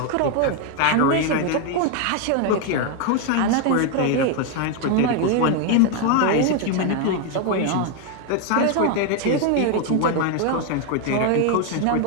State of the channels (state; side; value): different; both; correlation 0.01